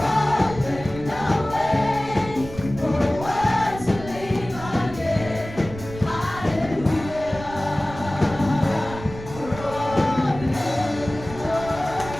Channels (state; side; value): noise; right; rumble, 13 dB below the sound